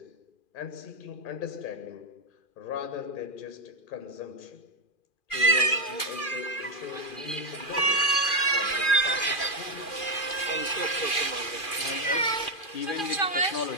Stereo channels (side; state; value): right; late; 2.4 ms